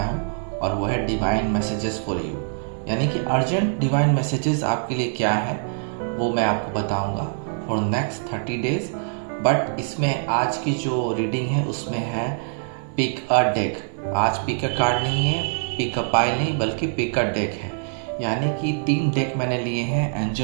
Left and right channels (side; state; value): left; silent; 56 dB below the other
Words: हूँ और वो है डिवाइन मैसेजेस फॉर यू। यानी कि अर्जेंट डिवाइन मैसेजेस आपके लिए क्या है वो मैं आपको बताऊंगा फॉर नेक्स्ट 30 डेज। बट इसमें आज की जो रीडिंग है उसमें है पिक अ डेक। आज पिक अ कार्ड नहीं है, पिक अ पाइल नहीं, बल्कि पिक अ डेक है। यानी कि 3 डेक मैंने लिए हैं,